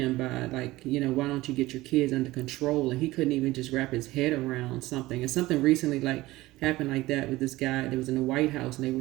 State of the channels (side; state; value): left; quieter; 18.4 dB